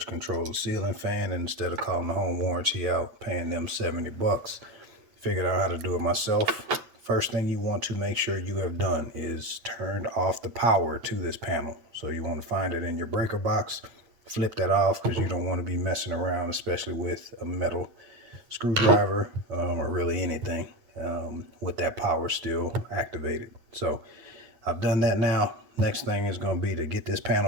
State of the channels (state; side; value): late; left; 8.8 ms